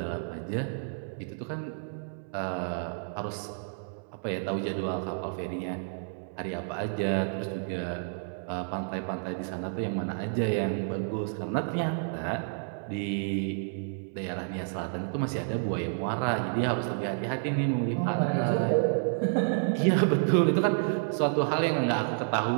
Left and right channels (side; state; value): left; silent; 58 dB below the other